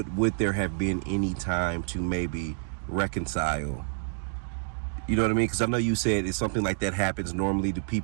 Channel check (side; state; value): left; silent; digital silence